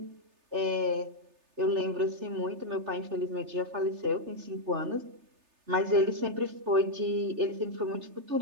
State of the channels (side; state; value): left; late; 3.3 ms